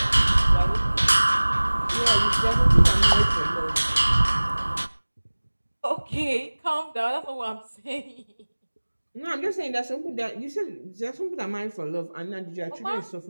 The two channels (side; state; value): both; inverted; correlation -1.00